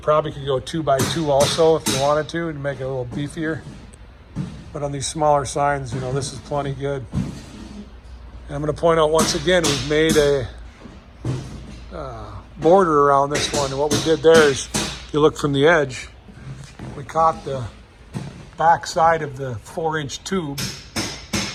could go 2 by 2 also if you wanted to make it a little beefier. But on these smaller signs, you know, this is plenty good. And I'm going to point out once again, we've made a border around this one. And what we did there is, if you look from the edge, we caught the back side of the 4-inch tube.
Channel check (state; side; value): identical; both; correlation 1.00